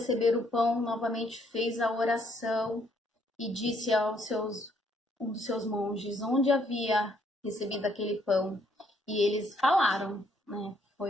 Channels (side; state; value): both; normal; correlation 0.69